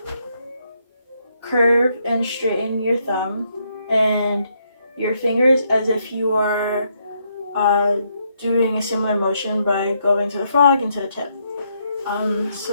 curve and straighten your thumb and your fingers as if you are doing a similar motion by going to the frog and to the tip.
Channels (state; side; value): inverted; both; correlation -0.75